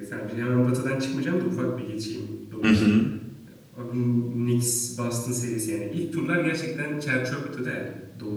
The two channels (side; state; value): both; identical; correlation 1.00